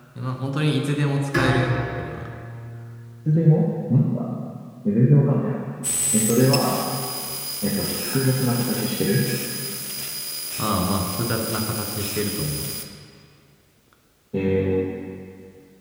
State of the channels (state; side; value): identical; both; correlation 1.00